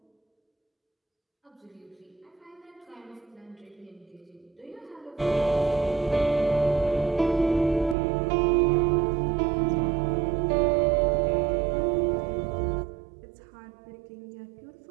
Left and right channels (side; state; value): left; drops out; at 8.0 s